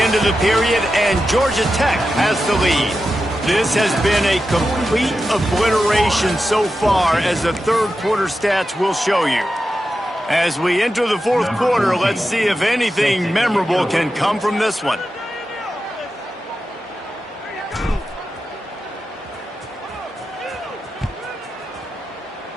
of the period, and Georgia Tech has the lead. This has been a complete obliteration so far, as the third quarter stats will show you. As we enter the fourth quarter, let's see if anything memorable can come from this one.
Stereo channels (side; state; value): both; normal; correlation 0.90